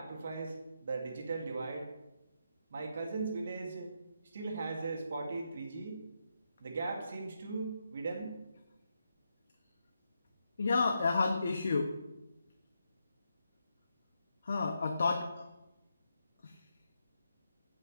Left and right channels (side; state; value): both; inverted; correlation -0.83